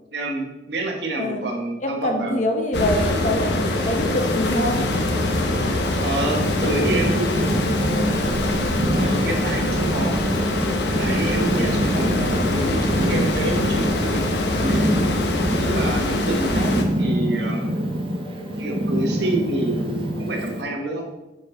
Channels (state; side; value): normal; both; correlation 0.57